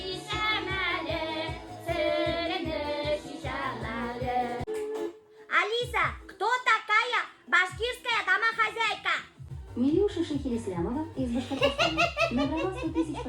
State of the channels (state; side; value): identical; both; correlation 1.00